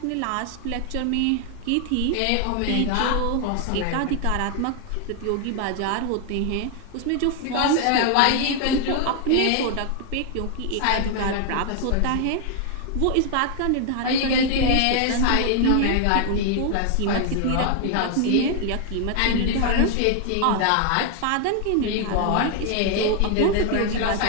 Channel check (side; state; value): both; different; correlation 0.00